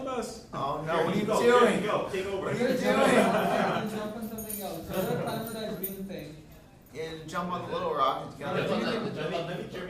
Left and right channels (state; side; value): identical; both; correlation 1.00